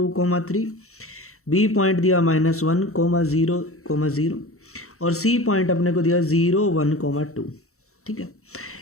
3, बी पॉइंट दिया -1, 0, 0 और सी पॉइंट अपने को दिया 0, 1, 2, ठीक है,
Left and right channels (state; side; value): late; right; 0.64 ms